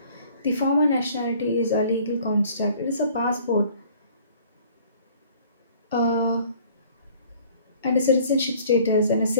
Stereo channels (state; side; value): inverted; both; correlation -0.54